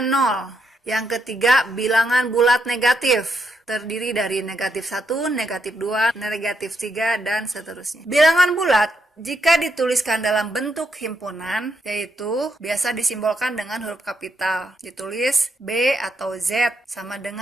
0. Yang ketiga, bilangan bulat negatif. Terdiri dari negatif 1, negatif 2, negatif 3, dan seterusnya. Bilangan bulat jika dituliskan dalam bentuk himpunan, yaitu biasa disimbolkan dengan huruf kapital. Ditulis B atau Z sama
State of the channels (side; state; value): both; normal; correlation 0.78